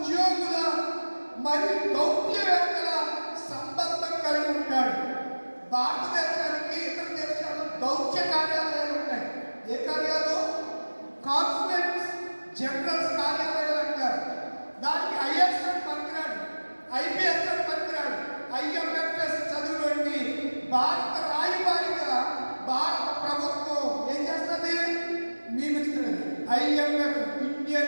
మరియు దౌత్యవేత్తల సంబంధం కలిగి ఉంటాడు. భారతదేశానికి ఇతర దేశాలు దౌత్య కార్యాలయాలు ఉంటాయి. ఏ కార్యాలు? కాన్సులేట్స్ జనరల్స్ కార్యాలయాలు అంటారు. దానికి ఐఎస్ అని పనికిరాడు, ఐపీఎస్ అని పనికిరాడు, ఐఎంఎఫ్ఎస్ చదువులోని భారత రాయబారిగా భారత ప్రభుత్వం ఏం చేస్తుంది? నియమిస్తున్నది. IMF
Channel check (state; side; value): inverted; both; correlation -1.00